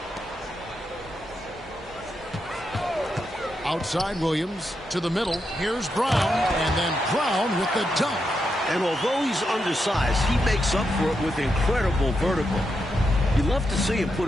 Outside Williams. To the middle. Here's Brown. And then Brown with the dunk. And although he's undersized, he makes up for it with incredible vertical. You love to see him put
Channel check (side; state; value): both; normal; correlation 0.84